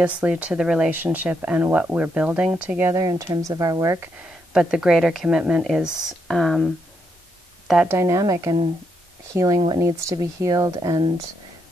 to the relationship and what we're building together in terms of our work, but the greater commitment is that dynamic and healing what needs to be healed and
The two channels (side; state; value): both; normal; correlation 0.79